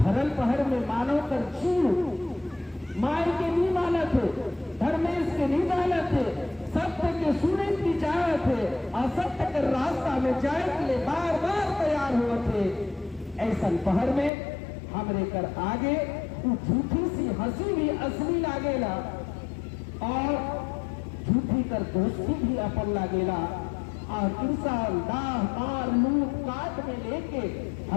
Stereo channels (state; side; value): drops out; right; at 14.3 s